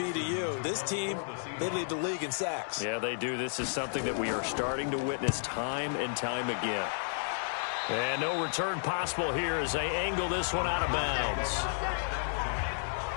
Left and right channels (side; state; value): right; silent; digital silence